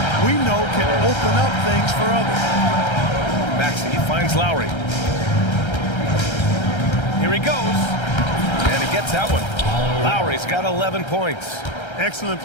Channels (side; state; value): right; late; 1.3 ms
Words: we know can open up things for others. Maxey finds Lowry. Here he goes. And he gets that one. Lowry's got 11 points. Excellent